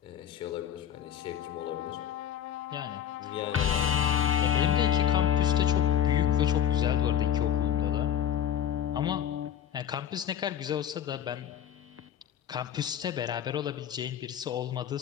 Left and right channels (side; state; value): right; quieter; 9.6 dB